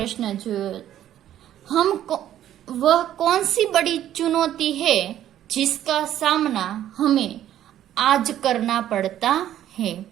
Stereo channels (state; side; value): quieter; left; 11.7 dB